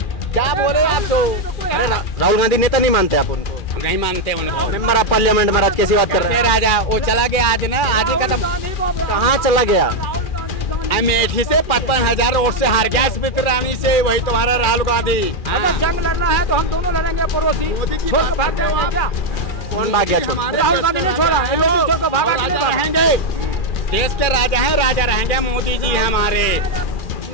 क्या बोले आप तो? अरे राहुल गांधी नेता नहीं मानते आप उनको? हम नहीं मानते उनको। मेंबर ऑफ पार्लियामेंट में आज कैसी बात कर रहे हैं? राजा वो चला गया आज ना, आज ही खत्म। कहाँ चला गया? अमेठी से 55,000 वोट से हार गया, स्मृति ईरानी से। वही तुम्हारा राहुल गांधी। अगर जंग लड़ना है तो हम दोनों लड़ेंगे, पड़ोसी छोड़ के भाग जाएंगे क्या? कौन भाग गया? राहुल गांधी ने छोड़ा, छोड़ के भागा। राजा रहेंगे, देश के राजा हैं, राजा रहेंगे, मोदी जी हमारे।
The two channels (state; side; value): late; right; 2.4 ms